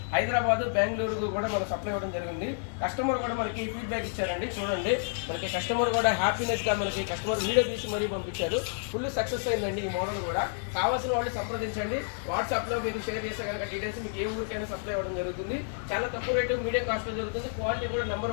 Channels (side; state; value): right; silent; digital silence